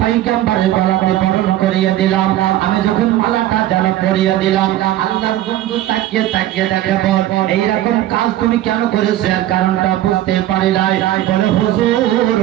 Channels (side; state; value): left; quieter; 13.8 dB